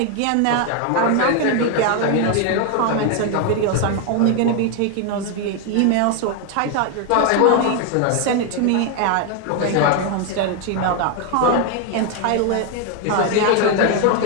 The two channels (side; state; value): both; different; correlation 0.01